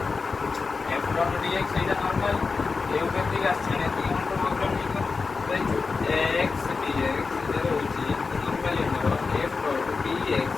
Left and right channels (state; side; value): quieter; right; 4.5 dB